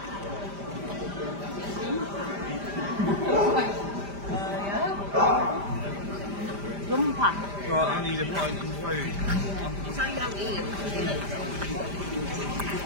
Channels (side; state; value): left; late; 5.0 ms